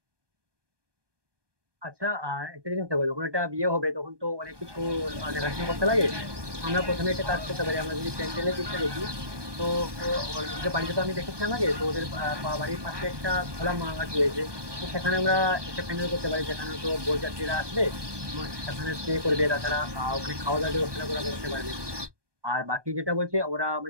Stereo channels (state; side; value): late; left; 1.2 ms